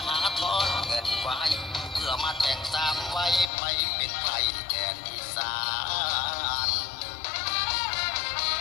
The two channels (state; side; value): drops out; right; at 3.5 s